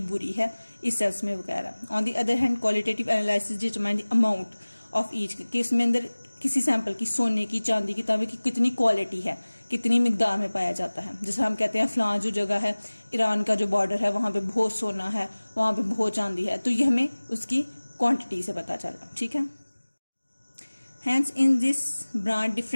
बुरी है, इस सेंस में वगैरह। On the other hand qualitative analysis determine the amount of each, कि इसमें अंदर किसी सैंपल की, सोने की, चांदी की, तांबे की कितनी क्वालिटी है, कितनी मिकदार में पाया जाता है। जैसे हम कहते हैं फलां जो जगह है, ईरान का जो बॉर्डर है, वहां पे बहुत सोना है, वहां पे बहुत चांदी है, तो ये हमें उसकी क्वांटिटी से पता चल रहा, ठीक है। Hence in this branch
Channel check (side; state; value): both; inverted; correlation -1.00